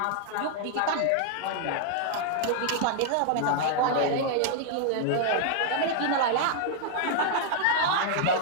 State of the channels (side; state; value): both; different; correlation -0.01